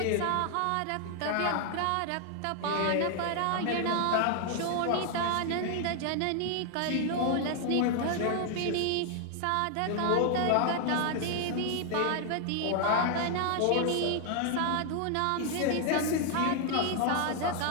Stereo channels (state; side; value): different; both; correlation 0.00